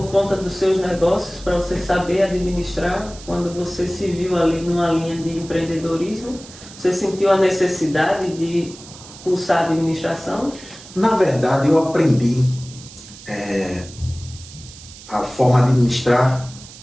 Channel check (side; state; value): right; noise; hiss, 18 dB below the sound